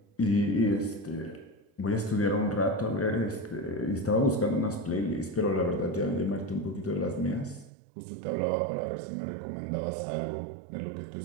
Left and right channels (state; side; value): drops out; left; at 7.7 s